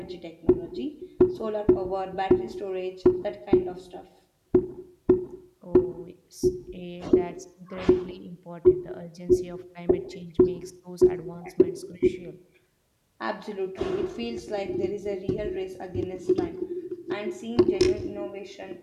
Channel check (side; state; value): both; identical; correlation 1.00